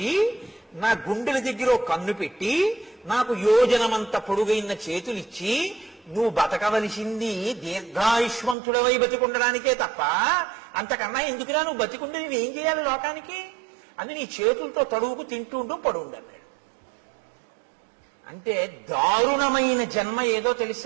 నా గుండెల దగ్గర కన్ను పెట్టి, నాకు యోజనమంత పొడుగైన చేతులిచ్చి, నువ్వు బతకవలసింది దీర్ఘాయుష్మంతుడవై బతికుండడానికే తప్ప అంతకన్నా ఎందుకురా నువ్వు బతికుండి నువ్వేం చేయాలి లోకానికి అని నీ చేతులతో తడువుకు తింటుంటూ పడుండన్నాడు. అంటే దారుణమైన జన్మ ఏదో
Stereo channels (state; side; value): drops out; left; at 8.6 s